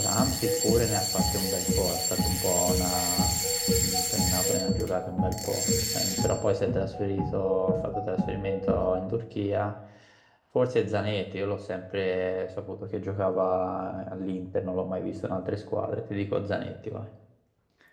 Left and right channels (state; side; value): identical; both; correlation 1.00